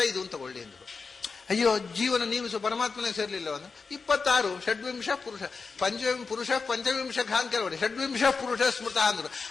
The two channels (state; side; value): quieter; right; 4.8 dB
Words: ಅಂತ ತಗೊಳ್ಳಿ ಅಂದ್ರು. ಅಯ್ಯೋ, ಜೀವನ ನೀವು ಪರಮಾತ್ಮನೇ ಸೇರ್ಲಿಲ್ಲ ಅಂದ್ರೆ 26 ಷಡ್ವಿಂಶ ಪುರುಷ ಪುರುಷ ಪಂಚವಿಂಶ ಅಂತ ಕೆಲವರು ಷಡ್ವಿಂಶ ಪುರುಷ ಸ್ಮೃತ ಅಂದ್ರು.